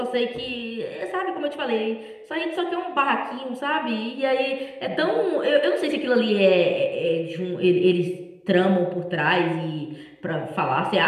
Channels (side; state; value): both; identical; correlation 1.00